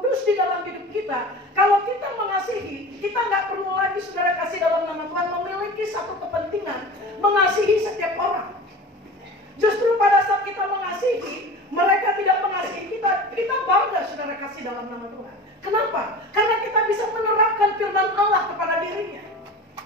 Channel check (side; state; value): both; normal; correlation 0.35